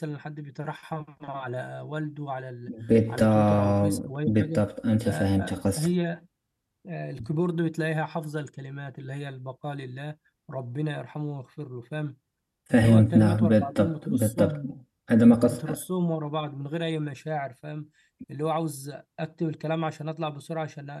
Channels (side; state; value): both; identical; correlation 1.00